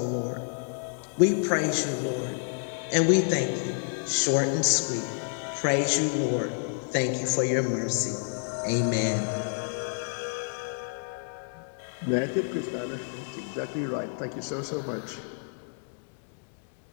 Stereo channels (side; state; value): right; silent; digital silence